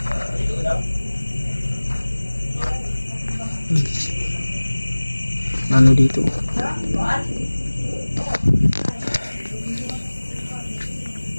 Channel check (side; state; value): both; inverted; correlation -1.00